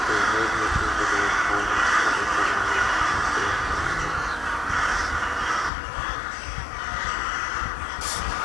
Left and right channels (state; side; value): drops out; right; at 5.7 s